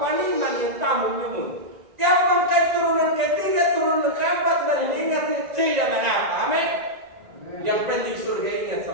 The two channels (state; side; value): late; left; 1.9 ms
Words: ni man yang tamu nyumun. Yang bangkai turunan ketiga, turunan keempat dari ingat tidak mengapa. Amin. Yang penting surga ingat